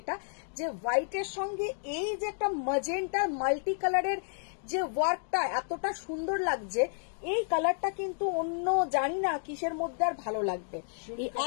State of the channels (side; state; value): right; silent; digital silence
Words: যে হোয়াইটের সঙ্গে এই যে একটা ম্যাজেন্টা মাল্টি কালারের যে ওয়ার্কটা এতটা সুন্দর লাগছে, এই কালারটা কিন্তু অন্য জানি না কিসের মধ্যে আর ভালো লাগবে। এই